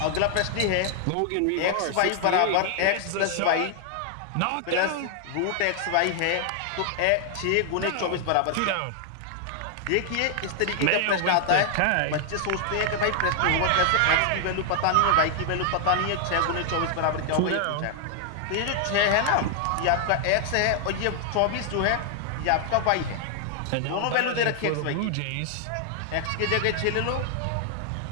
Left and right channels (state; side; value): different; both; correlation 0.00